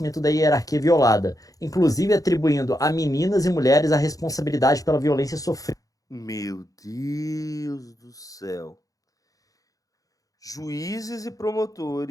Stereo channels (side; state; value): right; late; 0.17 ms